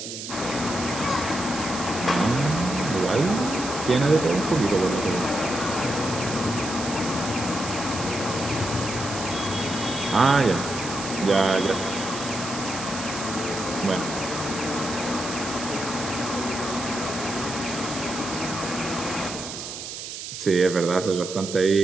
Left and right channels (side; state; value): right; noise; hiss, 8 dB below the sound